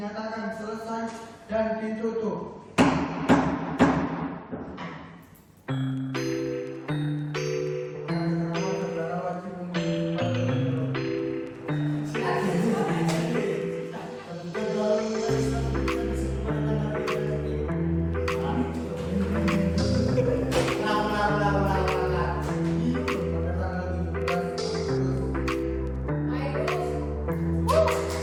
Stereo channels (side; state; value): both; identical; correlation 1.00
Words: selesai dan ditutup.